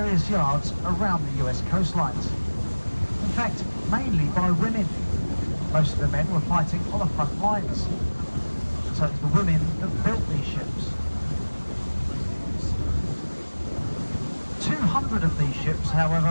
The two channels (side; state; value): both; inverted; correlation -1.00